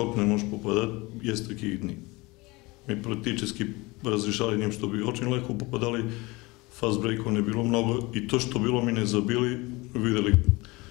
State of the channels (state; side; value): quieter; right; 23.5 dB